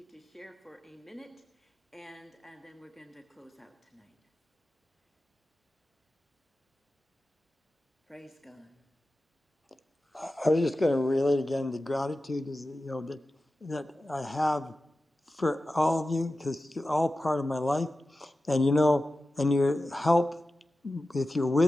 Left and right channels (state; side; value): normal; both; correlation 0.94